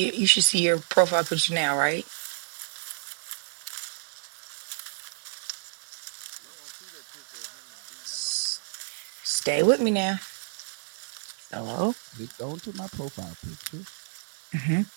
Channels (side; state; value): left; silent; digital silence